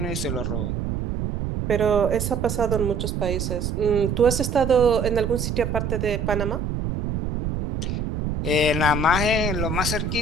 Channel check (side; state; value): right; noise; rumble, 2 dB below the sound